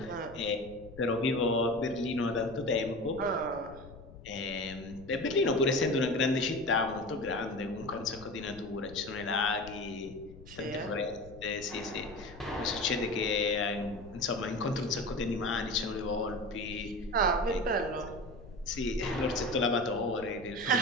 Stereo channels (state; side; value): noise; left; rumble, 17 dB below the sound